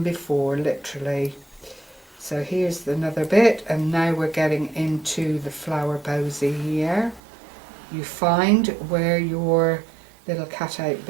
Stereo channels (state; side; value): drops out; left; at 7.2 s